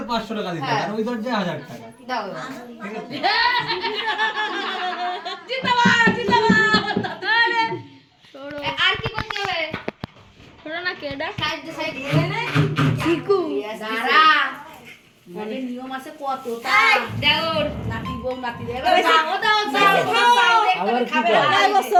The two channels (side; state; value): both; identical; correlation 1.00